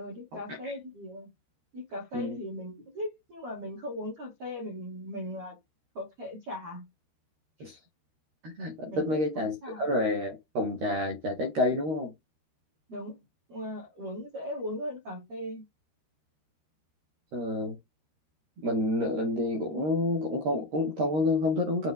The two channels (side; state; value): left; late; 13 ms